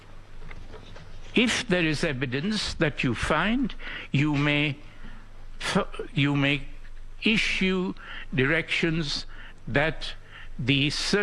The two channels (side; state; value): both; identical; correlation 1.00